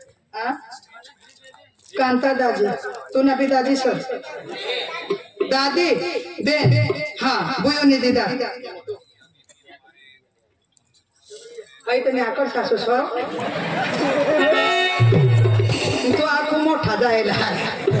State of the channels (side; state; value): both; identical; correlation 1.00